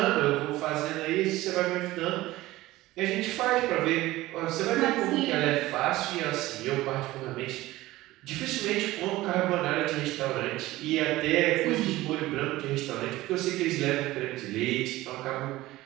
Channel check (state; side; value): quieter; left; 17.5 dB